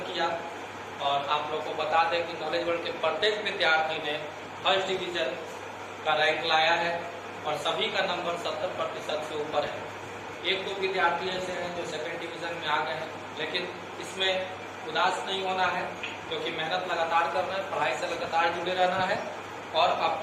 किया और आप लोग को बता दें कि नॉलेज वर्ल्ड के प्रत्येक विद्यार्थी ने फर्स्ट डिवीजन का रैंक लाया है और सभी का नंबर 70% से ऊपर है। एक दो विद्यार्थी ऐसे हैं जो सेकंड डिवीजन में आ गए हैं, लेकिन इसमें उदास नहीं होना है, क्योंकि मेहनत लगातार करना है, पढ़ाई से लगातार जुड़े रहना है और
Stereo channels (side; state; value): both; identical; correlation 1.00